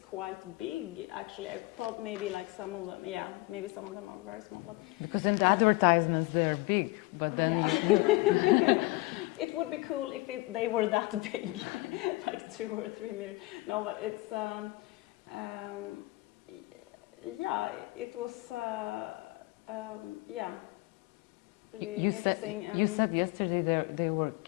big. Actually, I thought maybe like some of them, yeah, maybe some of them are very small. But Because in the advertisements they're big, but then yeah, it would be cool if they were that big, like 2 or 3 meters. No, but it's yeah, it was. Yeah, really interesting. You said yesterday they were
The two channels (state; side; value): quieter; right; 22.2 dB